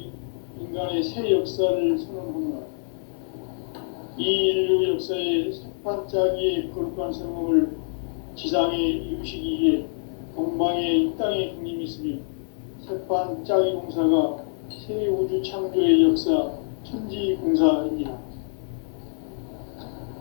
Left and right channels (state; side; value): silent; right; digital silence